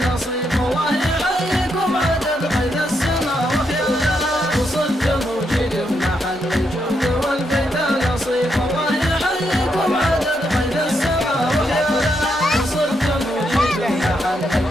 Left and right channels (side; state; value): both; normal; correlation 0.80